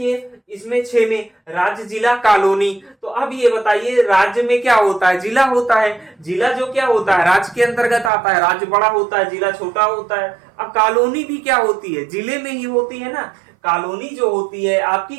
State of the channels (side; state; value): left; drops out; at 8.1 s